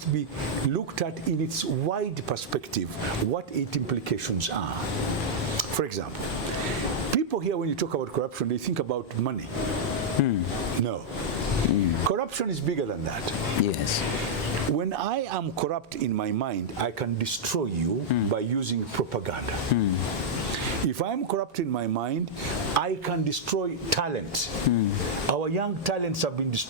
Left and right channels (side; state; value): both; normal; correlation -0.06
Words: be looked at in its wide perspective, what its implications are. For example, people here, when you talk about corruption, they think about money. No. Corruption is bigger than that. Yes. When I am corrupt in my mind, I can destroy you by using propaganda. If I'm corrupt in my mind, I can destroy talent. Our young talents have been